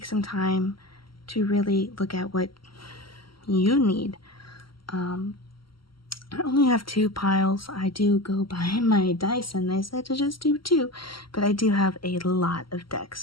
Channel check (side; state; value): right; late; 0.74 ms